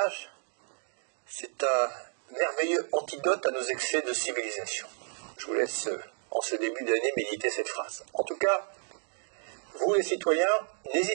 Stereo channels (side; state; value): left; silent; 57 dB below the other